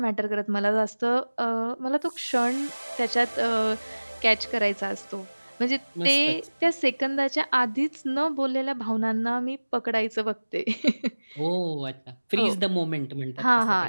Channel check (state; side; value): inverted; both; correlation -1.00